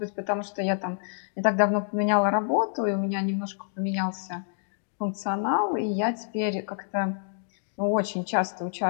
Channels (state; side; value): silent; right; digital silence